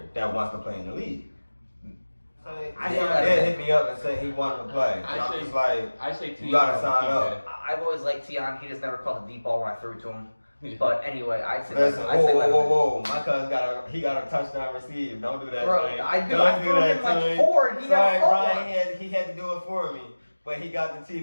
that wants to play in the league. He did hit me up and say he wanted to play. I say you gotta sign up. I've always liked Tion. He just never caught the deep ball when I threw it to him. But anyway, I'd say Listen, I'd say whoa. My cousin got a touchdown received. Don't do that, Bro, Tony. I do. Don't I threw him like Tony. 4 and he Sorry, never caught Brian, one. he had to do it for me. But he got the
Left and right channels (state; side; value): inverted; both; correlation -1.00